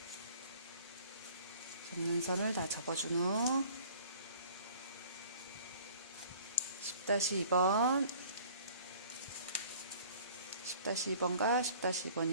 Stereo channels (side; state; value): both; inverted; correlation -0.51